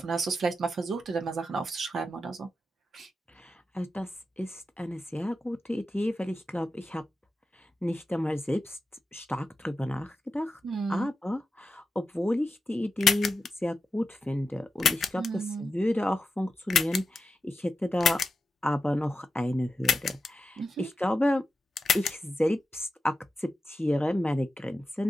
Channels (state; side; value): normal; both; correlation 0.89